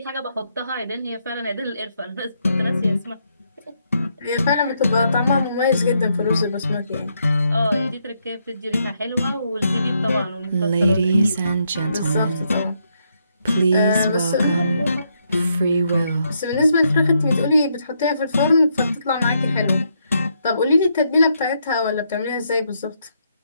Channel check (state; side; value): inverted; both; correlation -0.77